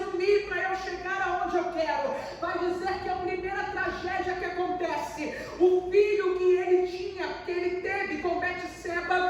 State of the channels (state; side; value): identical; both; correlation 1.00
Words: para eu chegar aonde eu quero. Vai dizer que a primeira tragédia que acontece, o filho que ele teve com